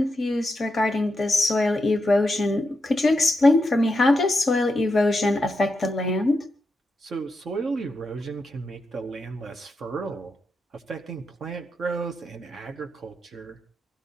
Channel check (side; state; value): both; normal; correlation 0.86